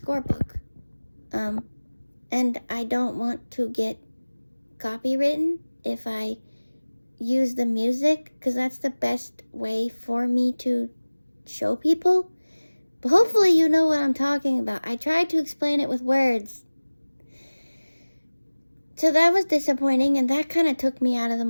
book. And I don't want to get copywritten if I use the music, because that's the best way for me to show people. But hopefully you know what I'm talking about. I tried to explain it with words. So that was disappointing, and that kind of took me out of the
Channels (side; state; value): both; inverted; correlation -1.00